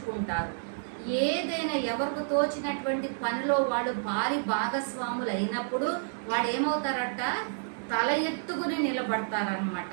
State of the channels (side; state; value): left; silent; digital silence